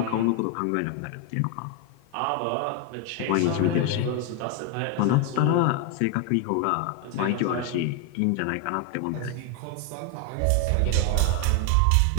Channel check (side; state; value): both; different; correlation 0.01